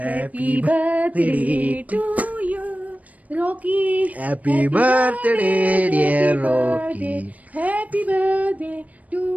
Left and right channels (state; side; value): late; left; 0.071 ms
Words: birthday to you Rocky. Happy birthday dear Rocky. Happy birthday to